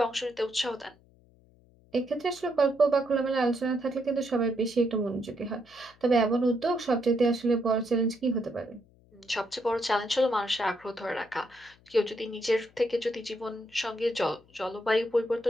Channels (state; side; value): noise; left; hum, 29 dB below the sound